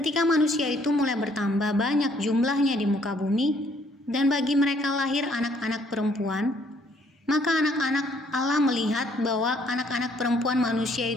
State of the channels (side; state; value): both; normal; correlation 0.65